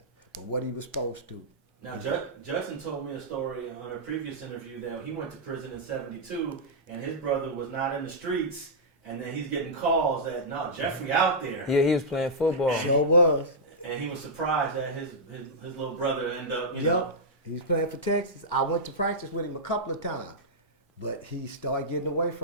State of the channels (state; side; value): normal; both; correlation -0.09